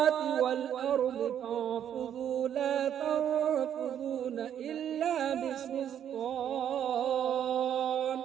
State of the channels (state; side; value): quieter; left; 9.6 dB